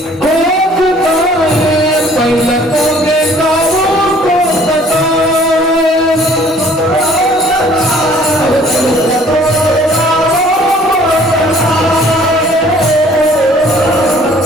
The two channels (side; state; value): both; normal; correlation 0.56